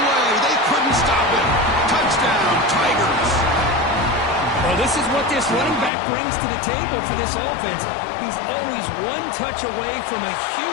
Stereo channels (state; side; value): drops out; right; at 5.9 s